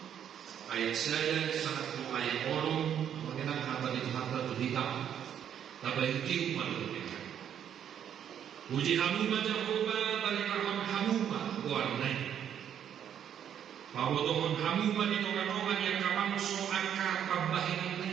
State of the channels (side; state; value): left; quieter; 9.3 dB